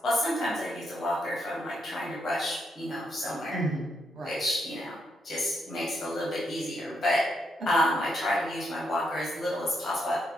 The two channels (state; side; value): normal; both; correlation 0.79